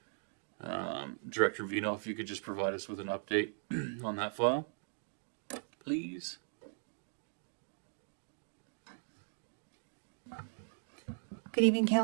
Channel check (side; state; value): left; silent; 52 dB below the other